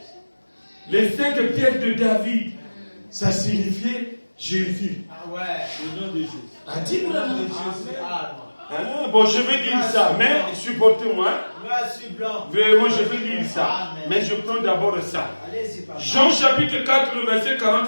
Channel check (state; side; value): inverted; both; correlation -1.00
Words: Les 5 pierres de David, ça signifiait Jésus. Ah ouais, le nom de Jésus. A dit Branham. Bon, je vais lire ça, mais supportez-moi. Vraiment, je vais lire ça. Mais je prends d'abord ça. Jean chapitre 4, le verset